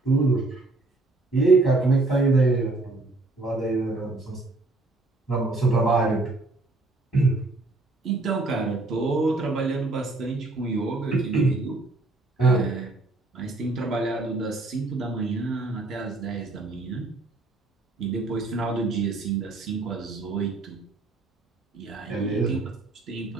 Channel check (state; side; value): quieter; left; 3.1 dB